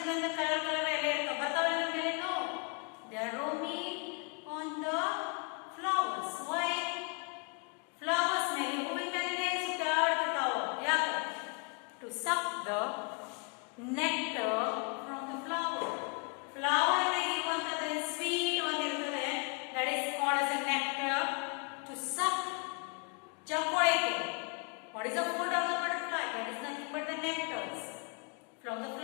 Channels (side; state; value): right; quieter; 36.9 dB